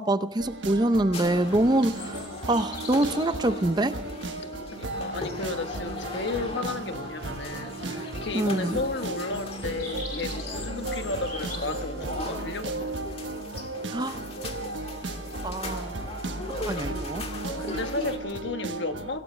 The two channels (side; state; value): both; normal; correlation 0.48